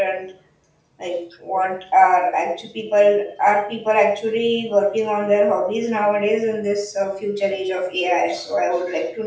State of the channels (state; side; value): identical; both; correlation 1.00